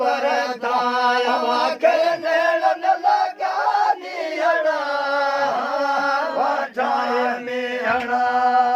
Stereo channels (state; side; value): identical; both; correlation 1.00